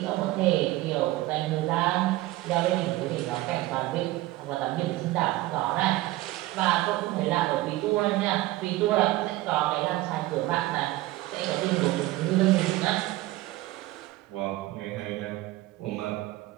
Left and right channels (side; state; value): left; quieter; 17.7 dB